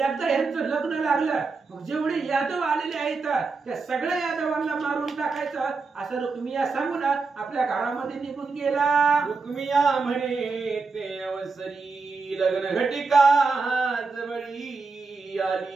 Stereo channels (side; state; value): left; quieter; 4.3 dB